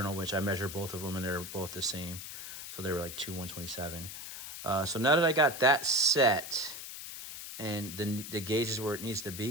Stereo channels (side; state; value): left; noise; hiss, 9 dB below the sound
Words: which I measured both of them, and they're both the same. So they were like 2/127. So now that I got that set and the gauge is where it needs to